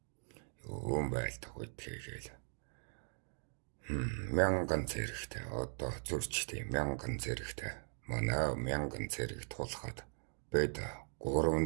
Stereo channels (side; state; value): left; silent; digital silence